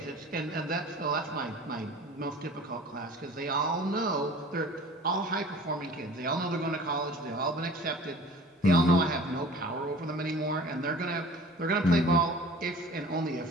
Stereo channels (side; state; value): both; normal; correlation 0.45